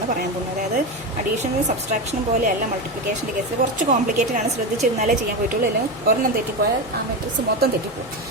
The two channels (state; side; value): normal; both; correlation 0.17